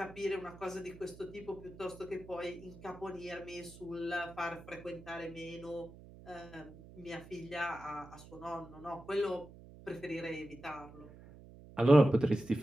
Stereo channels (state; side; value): noise; right; hum, 18 dB below the sound